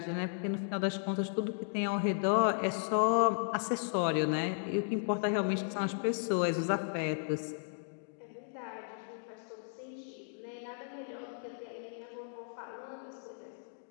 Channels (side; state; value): right; silent; digital silence